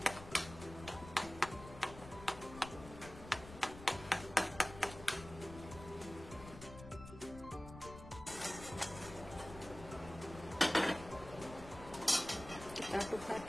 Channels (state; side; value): noise; left; rumble, 14 dB below the sound